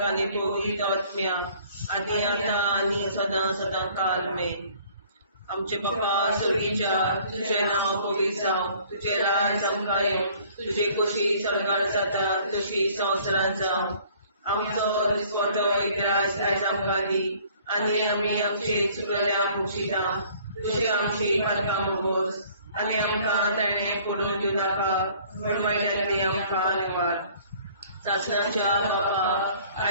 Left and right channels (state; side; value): inverted; both; correlation -0.55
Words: आनी पवित्र आत्म्या आदी आतां आनी सदां सदां काल मेन. आमचे बापा सर्गीच्या तुझें नांव पवित्र जावं. तुझें राज आमकां येवं. तुझे कशी सरकार जाता तशी संवसारांत जावं. आमचो दिसवटो एकदांच आयज आमकां दी आनी आमी आमचे चुकल्यांक मुक्षिता. तुझे आमची पातकां मोगोस आनी आमकां ताणें पडून दिवं नाका पूण वायटांतली आमकां निवार. शासनाच्या बापा